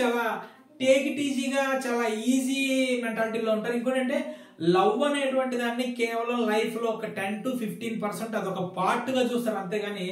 చాలా టేక్ ఇట్ ఈజీగా, చాలా ఈజీ మెంటాలిటీలో ఉంటారు. ఇంకోటి అంటే లవ్ అనేటువంటి దాన్ని కేవలం లైఫ్ లో ఒక 10-15% అదొక పార్ట్ గా చూస్తారు, అంతేగాని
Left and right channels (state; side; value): identical; both; correlation 1.00